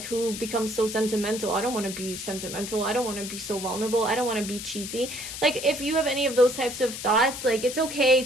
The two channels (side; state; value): left; noise; hiss, 8 dB below the sound